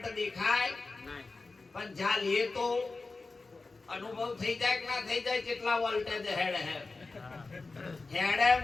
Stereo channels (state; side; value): quieter; right; 3.7 dB